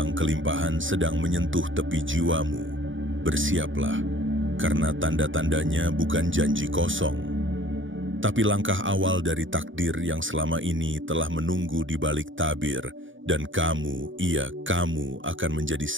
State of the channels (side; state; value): left; late; 0.57 ms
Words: kelimpahan sedang menyentuh tepi jiwamu. Bersiaplah, karena tanda-tandanya bukan janji kosong, tapi langkah awal dari takdir yang selama ini telah menunggu di balik tabir, dan kamu, kamu akan menjadi